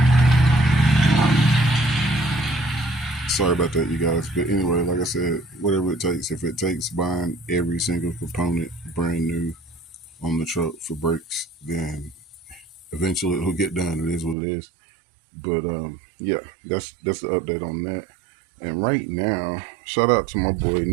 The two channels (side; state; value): left; drops out; at 14.4 s